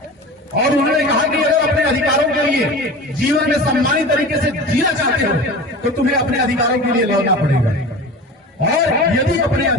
और उन्होंने कहा कि अगर अपने अधिकारों के लिए जीवन में सम्मानित तरीके से जीना चाहते हो तो तुम्हें अपने अधिकारों के लिए लड़ना पड़ेगा, और यदि अपने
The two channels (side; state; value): both; normal; correlation 0.34